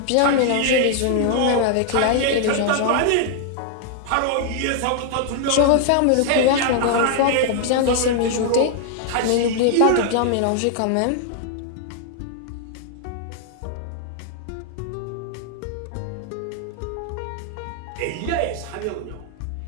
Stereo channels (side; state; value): both; different; correlation 0.00